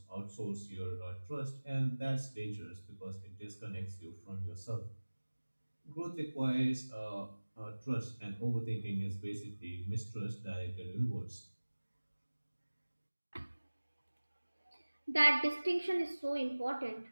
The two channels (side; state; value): both; inverted; correlation -1.00